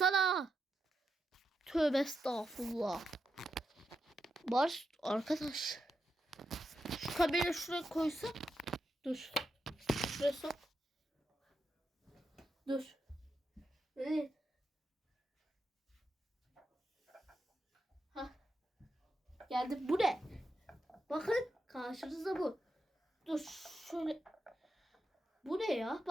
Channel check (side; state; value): both; normal; correlation 0.86